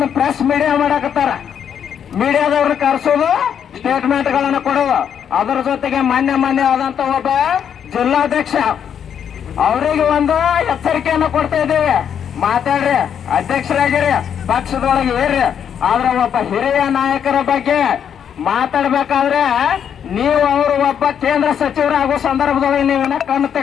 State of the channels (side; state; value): right; quieter; 8.4 dB